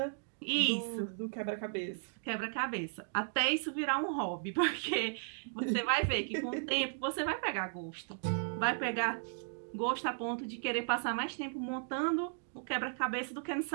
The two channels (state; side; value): silent; left; digital silence